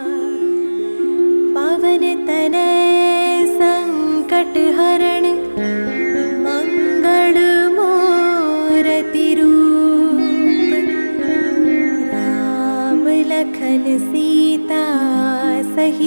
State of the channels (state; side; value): inverted; both; correlation -1.00